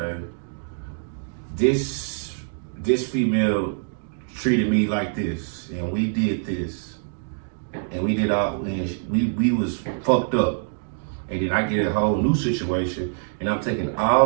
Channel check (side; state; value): left; silent; digital silence